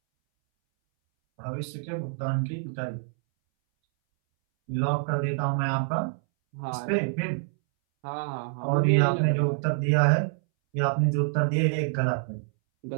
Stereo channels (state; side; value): silent; left; 60 dB below the other